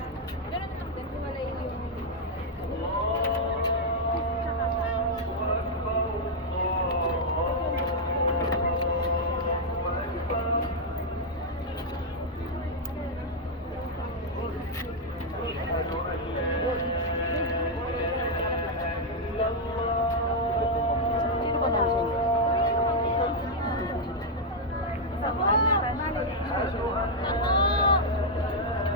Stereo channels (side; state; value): both; normal; correlation -0.01